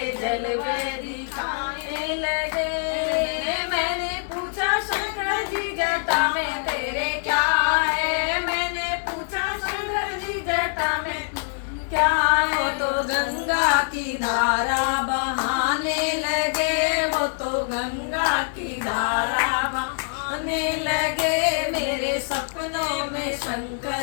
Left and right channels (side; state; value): right; silent; digital silence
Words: जलवे दिखाने लगे। मैंने पूछा शंकर जी जटा में तेरे क्या है, मैंने पूछा शंकर जी जटा में क्या है। तो गंगा की धारा बहाने लगे, वो तो गंगा की धारा बहाने लगे। मेरे सपनों में